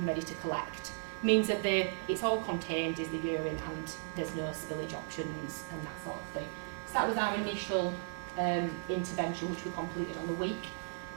ready to collect. Means that it's all contained is the urine, and there's no spillage options and that sort of thing. So that was our initial intervention, which we completed on the week.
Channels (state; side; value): silent; left; digital silence